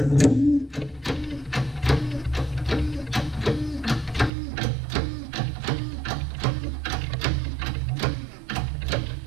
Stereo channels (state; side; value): drops out; left; at 4.3 s